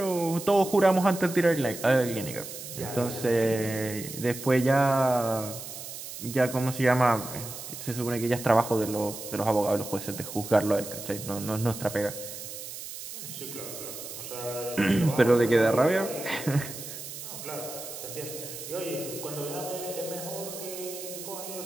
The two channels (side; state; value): right; noise; hiss, 10 dB below the sound